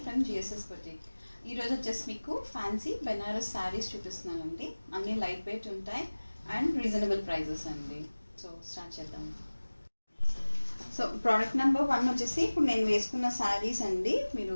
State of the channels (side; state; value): both; inverted; correlation -1.00